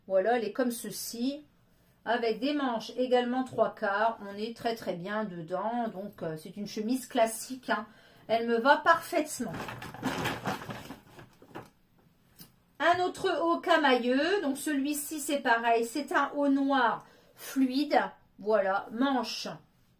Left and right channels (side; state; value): both; identical; correlation 1.00